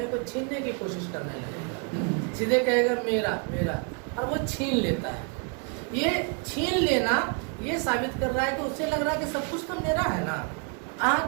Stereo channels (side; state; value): left; quieter; 37.1 dB